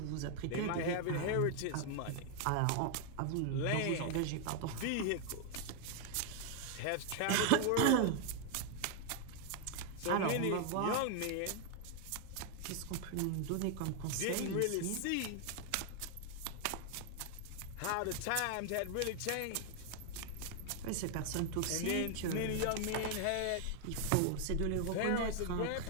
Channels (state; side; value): different; both; correlation 0.00